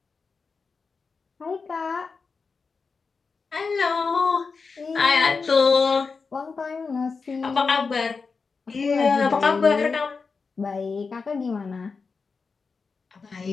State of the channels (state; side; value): quieter; right; 4.8 dB